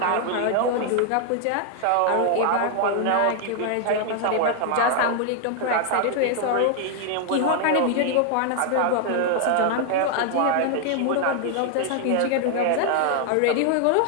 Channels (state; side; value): different; both; correlation 0.00